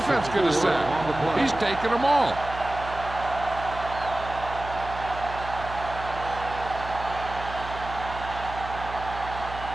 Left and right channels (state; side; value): noise; right; hum, 11 dB below the sound